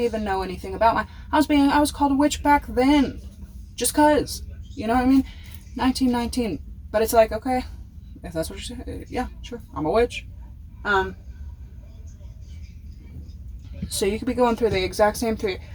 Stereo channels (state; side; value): identical; both; correlation 1.00